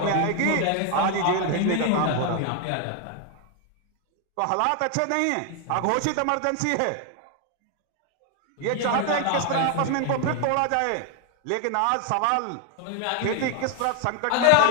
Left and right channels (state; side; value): different; both; correlation 0.01